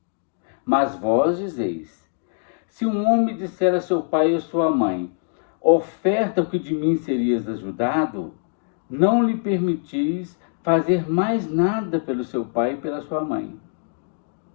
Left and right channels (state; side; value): silent; right; digital silence